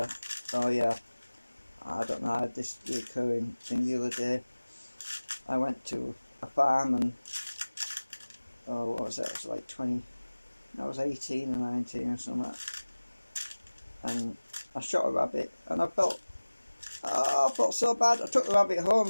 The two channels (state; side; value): inverted; both; correlation -1.00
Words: yeah, I don't know, I had this recurring thing the other day. I went to a farm and, oh, what was that? It was like 20, I was 18 or 19 or something. And I shot a rabbit and I felt so bad. I took the rabbit home